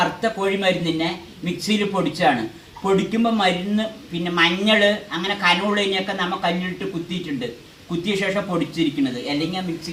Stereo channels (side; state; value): both; identical; correlation 1.00